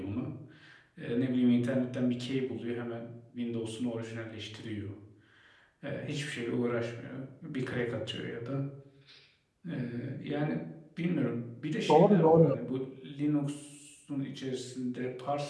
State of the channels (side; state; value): both; identical; correlation 1.00